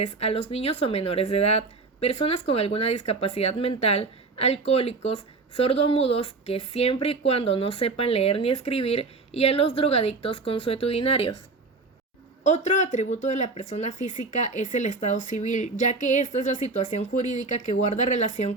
a los niños o menores de edad, personas con alguna discapacidad mental, alcohólicos, sordomudos que siempre y cuando no sepan leer ni escribir, y a los drogadictos consuetudinarios. Otro atributo de la persona física es el estado civil, ya que esta es la situación jurídica que guarda relación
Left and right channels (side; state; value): left; quieter; 3.8 dB